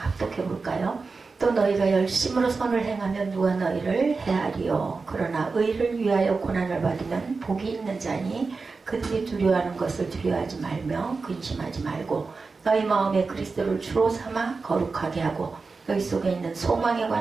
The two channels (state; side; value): quieter; left; 4.3 dB